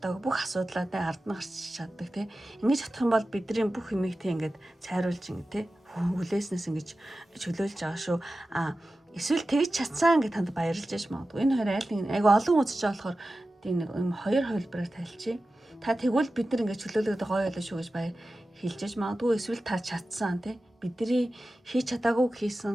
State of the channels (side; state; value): both; normal; correlation 0.94